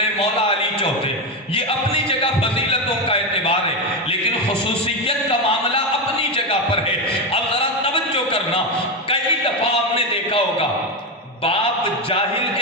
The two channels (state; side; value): normal; both; correlation 0.11